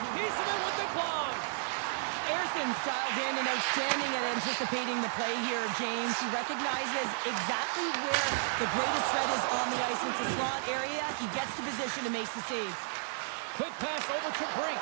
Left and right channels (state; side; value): silent; left; digital silence